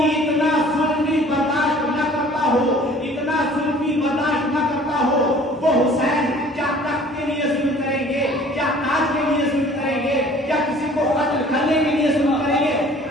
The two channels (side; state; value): both; normal; correlation 0.51